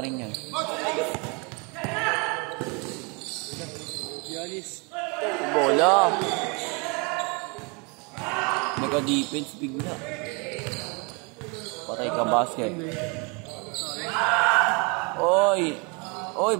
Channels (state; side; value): quieter; left; 31.5 dB